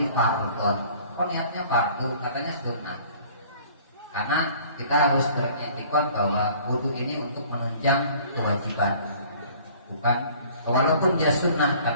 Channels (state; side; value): inverted; both; correlation -0.52